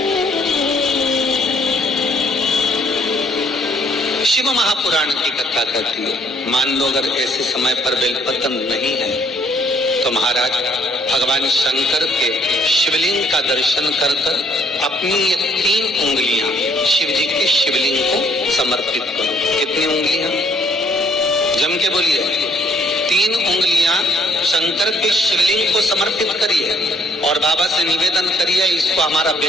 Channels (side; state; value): both; normal; correlation 0.66